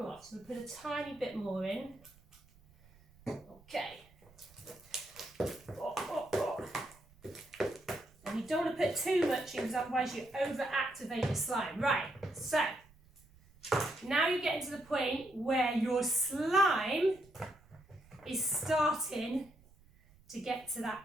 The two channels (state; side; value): noise; right; rumble, 27 dB below the sound